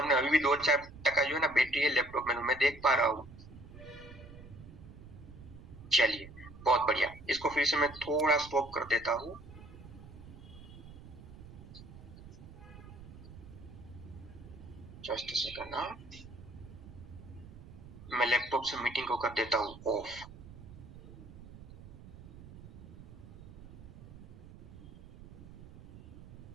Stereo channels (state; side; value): noise; right; rumble, 16 dB below the sound